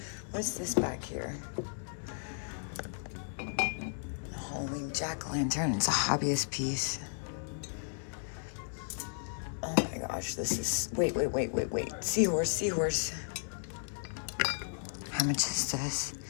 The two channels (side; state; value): right; silent; 55 dB below the other